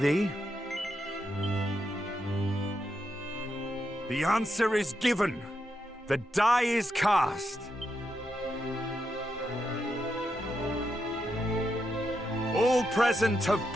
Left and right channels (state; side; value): normal; both; correlation 0.84